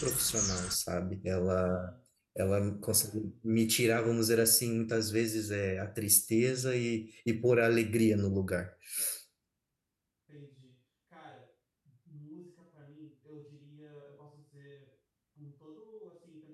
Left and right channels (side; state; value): both; identical; correlation 1.00